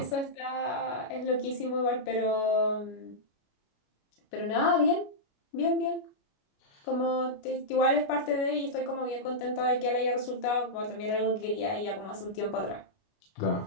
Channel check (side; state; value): right; late; 29 ms